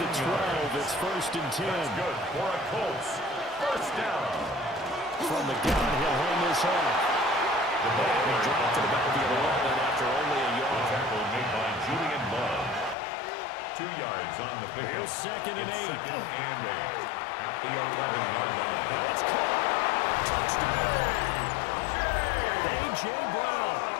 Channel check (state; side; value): drops out; right; at 13.0 s